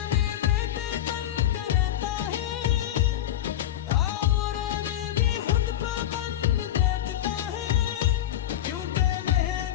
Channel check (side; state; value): right; quieter; 12.1 dB